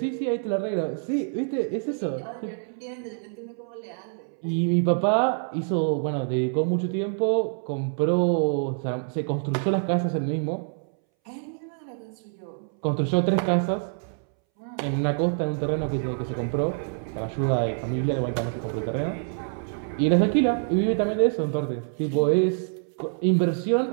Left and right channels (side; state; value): left; silent; 61 dB below the other